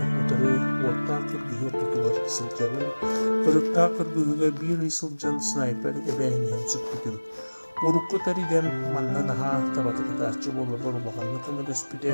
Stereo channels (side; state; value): both; inverted; correlation -1.00